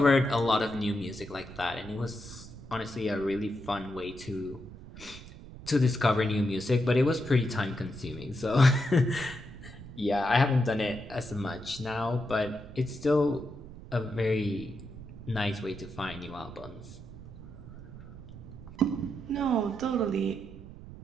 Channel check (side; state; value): right; noise; rumble, 15 dB below the sound